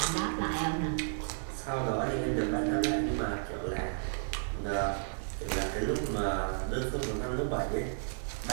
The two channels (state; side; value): silent; left; 56 dB below the other